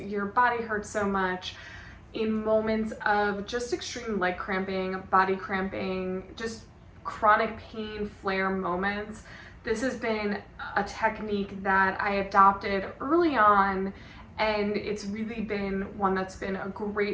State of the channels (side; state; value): both; identical; correlation 1.00